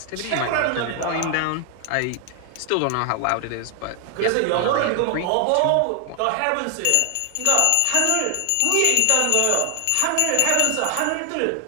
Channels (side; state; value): both; different; correlation 0.00